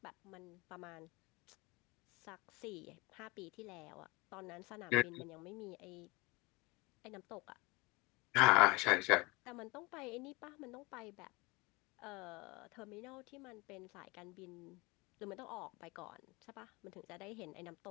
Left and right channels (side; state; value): right; quieter; 25.1 dB